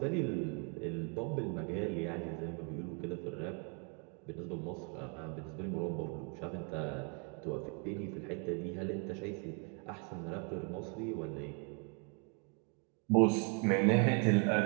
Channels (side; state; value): left; quieter; 37.0 dB